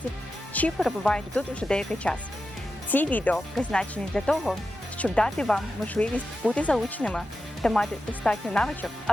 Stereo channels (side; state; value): both; normal; correlation 0.91